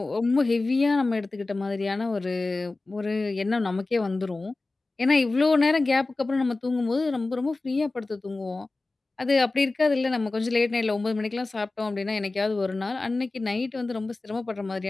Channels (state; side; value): quieter; right; 3.3 dB